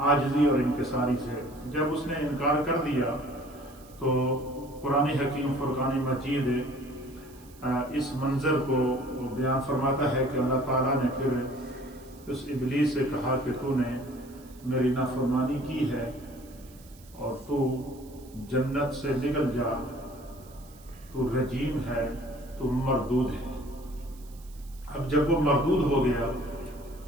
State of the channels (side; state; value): right; noise; hiss, 24 dB below the sound